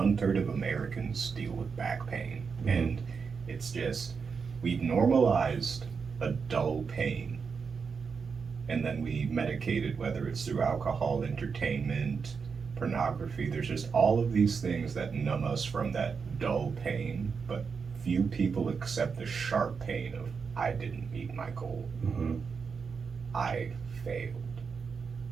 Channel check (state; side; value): quieter; left; 5.6 dB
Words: of Americans deal with back pain. Mm-hmm. And it's just, we've normalized a dull pain. And then we medicate it, whether it's through alcohol, entertainment, pornography. There's just all of these things that numb us from that dull pain, but few people accept the sharp pain of, I didn't meet my goal. Mm-hmm. I failed.